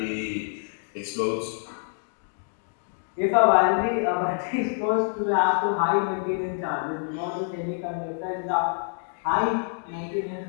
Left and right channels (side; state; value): right; silent; digital silence